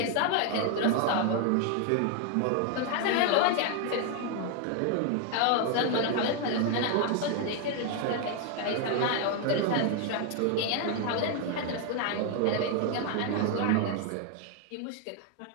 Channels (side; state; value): both; different; correlation 0.01